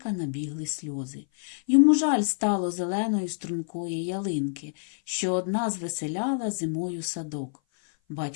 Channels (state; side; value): silent; right; 56 dB below the other